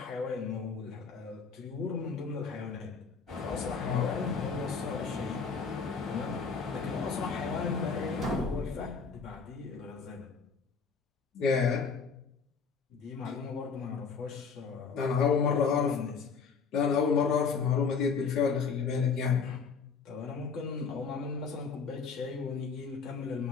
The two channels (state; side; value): quieter; right; 5.4 dB